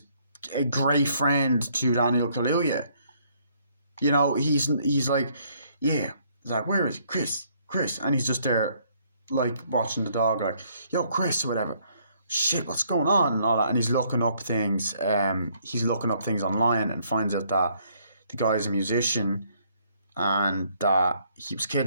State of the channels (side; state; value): both; inverted; correlation -0.67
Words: a great friend to Daniel Kaluuya. He's like, yeah. He's like, where is Chris? And he's just there, like, watching the dog, like, yo, Chris, or whatever. Shit, what's going on? And all that. And he's looking up things. He's looking up things online and finds out that the guy's a musician and that he was